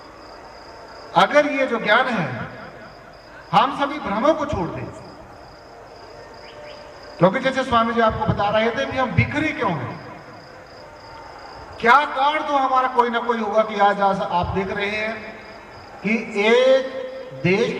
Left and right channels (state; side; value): identical; both; correlation 1.00